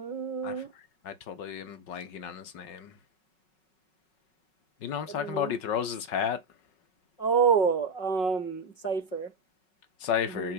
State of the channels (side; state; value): right; late; 5.4 ms